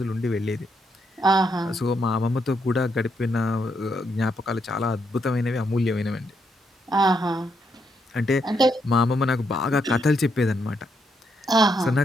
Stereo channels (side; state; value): both; normal; correlation 0.78